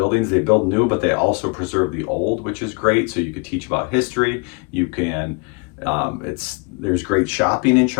They build new, but they also preserve the old, which is great. So you could teach about history. You can, there's great shopping in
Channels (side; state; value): right; quieter; 33.0 dB